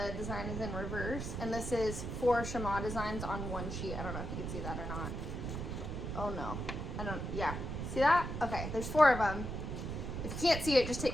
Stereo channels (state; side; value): noise; right; rumble, 4 dB below the sound